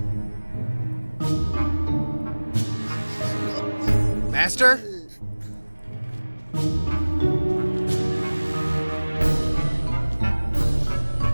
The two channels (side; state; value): both; inverted; correlation -1.00